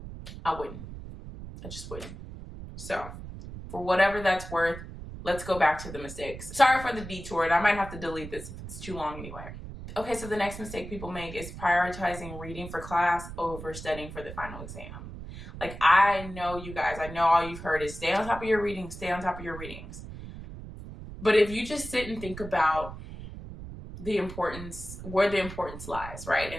I wouldn't. I just wouldn't. So, for whatever that's worth, let's go back to the mistakes. Sorry for the detour, and I might have to delete this if it's too long anyway. Okay, so the next mistake people make is prioritizing reading for class over studying for the final exam. Like, I know you guys, I know all you've heard is stay on top of your readings, stay on top of your readings. But if you just sit and think about the importance, where the importance lies,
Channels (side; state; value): right; noise; rumble, 11 dB below the sound